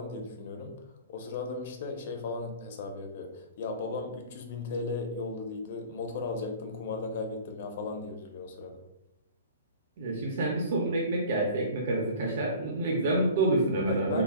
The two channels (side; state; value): both; inverted; correlation -0.43